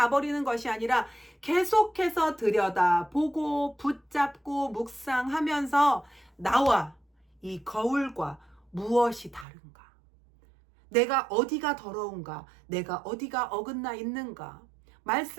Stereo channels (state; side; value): drops out; left; at 9.5 s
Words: 것이 아니라 계속해서 들여다보고 붙잡고 묵상하면서 나와 이 거울과 무엇이 다른가? 내가 어디가 더러운가? 내가 어디가 어긋나 있는가?